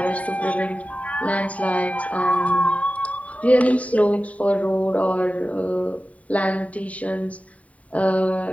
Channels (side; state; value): right; late; 0.068 ms